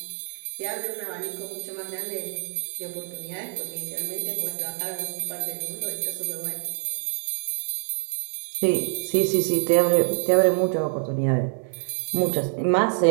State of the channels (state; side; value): silent; left; 61 dB below the other